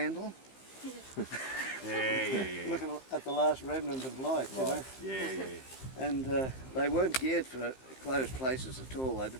Yeah. looking at the last remnant of light, you know. Yeah. And they weren't geared for closed places at all, they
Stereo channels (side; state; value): right; late; 15 ms